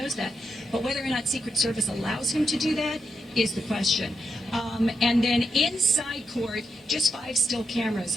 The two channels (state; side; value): normal; both; correlation 0.83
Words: that. But whether or not Secret Service allows him to do that is the question. And then inside court, just 5 still